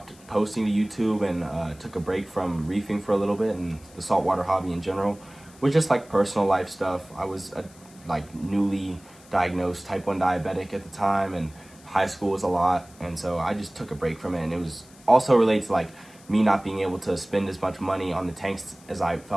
posting to YouTube and took a break from reefing for a little bit and the saltwater hobby in general was just like personal life stuff. I was like newly diagnosed type 1 diabetic at the time, and high school was a lot, and so I just took a break from it. And it was also related to like me not being able to spend as much money on the tanks as I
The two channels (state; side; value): noise; left; hiss, 24 dB below the sound